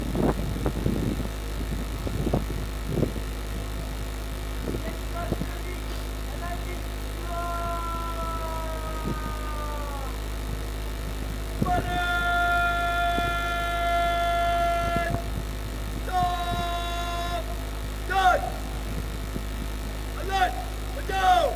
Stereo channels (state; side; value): identical; both; correlation 1.00